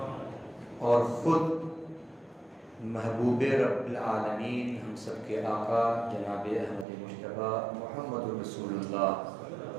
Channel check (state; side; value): drops out; left; at 6.9 s